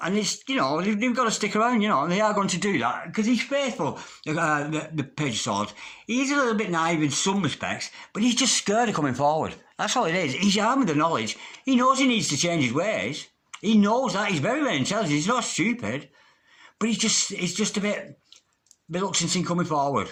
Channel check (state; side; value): identical; both; correlation 1.00